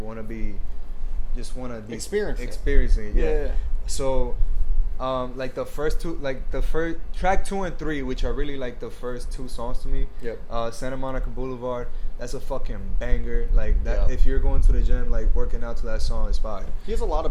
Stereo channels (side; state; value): both; identical; correlation 1.00